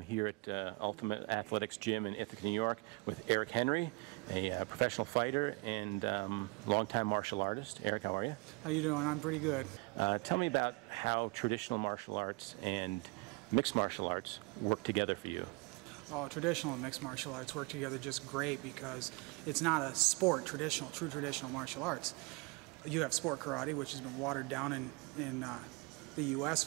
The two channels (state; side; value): quieter; left; 27.0 dB